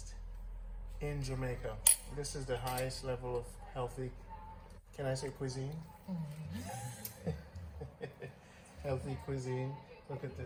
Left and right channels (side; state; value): both; identical; correlation 1.00